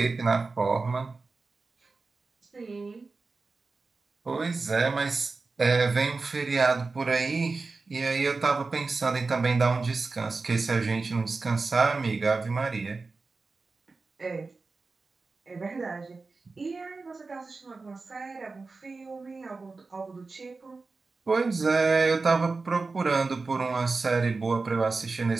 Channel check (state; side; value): quieter; left; 4.0 dB